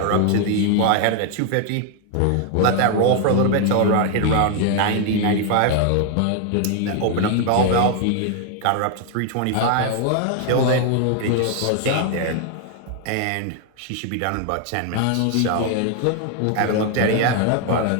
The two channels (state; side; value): different; both; correlation 0.00